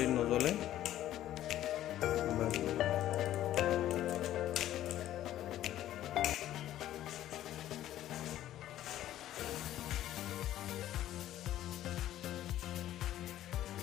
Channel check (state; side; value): quieter; right; 12.9 dB